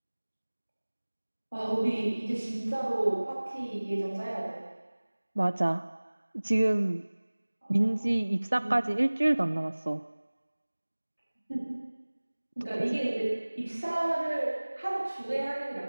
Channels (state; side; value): inverted; both; correlation -1.00